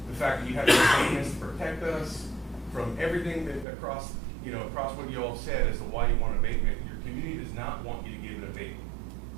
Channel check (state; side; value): drops out; left; at 3.7 s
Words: fact that you have to pay us to protect us, from everything that across what you all said as to why you want an abatement. Your community does not want you to give an abatement.